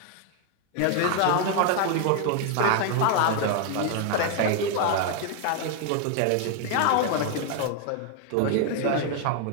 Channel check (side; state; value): both; different; correlation 0.00